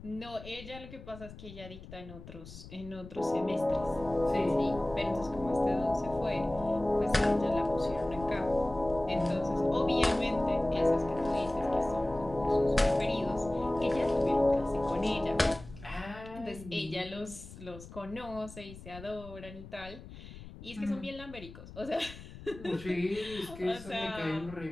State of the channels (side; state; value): left; noise; rumble, 15 dB below the sound